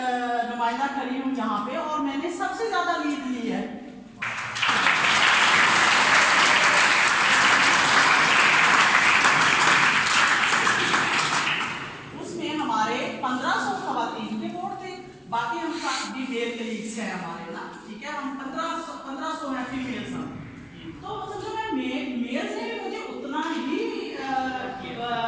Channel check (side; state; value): both; identical; correlation 1.00